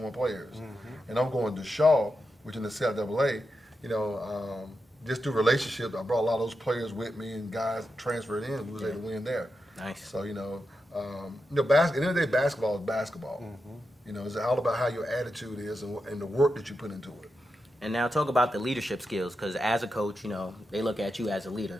I players. And I'm going to Shaw, which in the CIAA, just through relationships, I brought a lot of those players with me and guys transferred in. We was able to win there. Nice. So, at the end of the day, basketball is basketball. It's all about how your attitude is and the work that you put into it. And now talk about the leadership skills, because as a coach, they look at you as a leader.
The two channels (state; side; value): normal; both; correlation 0.88